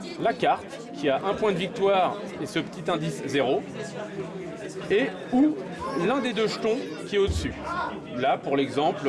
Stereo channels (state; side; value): identical; both; correlation 1.00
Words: la carte, qui a un point de victoire et ce petit indice 0, ou l'un des deux jetons qui est au-dessus. Là, pour